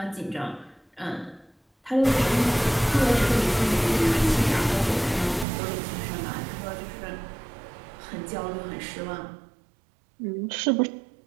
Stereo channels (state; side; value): drops out; left; at 5.5 s